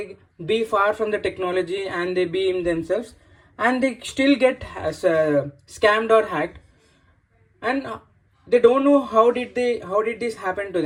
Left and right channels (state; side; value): identical; both; correlation 1.00